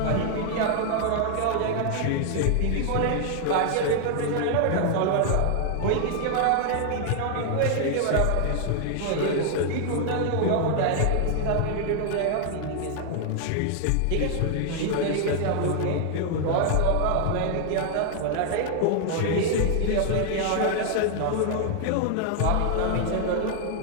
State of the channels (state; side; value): different; both; correlation 0.00